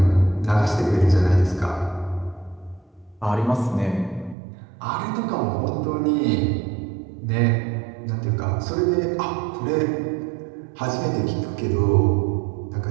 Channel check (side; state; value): left; drops out; at 4.4 s